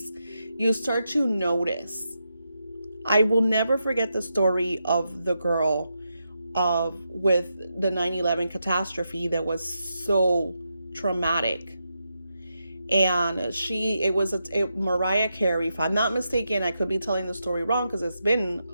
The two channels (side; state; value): both; inverted; correlation -0.85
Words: You start to notice. I will never forget the story of the girl with the 9/11 catastrophe that was so traumatic. And it was Mariah Carey, if I'm not mistaken. I could be telling the story wrong because it's been